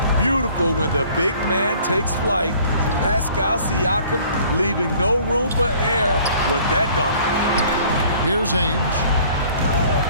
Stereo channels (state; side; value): inverted; both; correlation -0.54